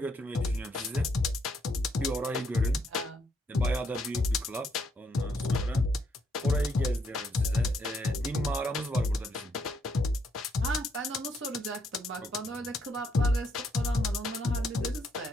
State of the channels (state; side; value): normal; both; correlation 0.73